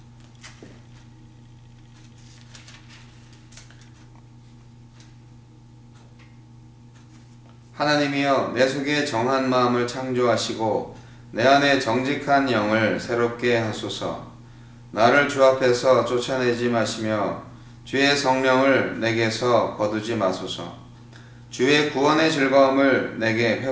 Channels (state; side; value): identical; both; correlation 1.00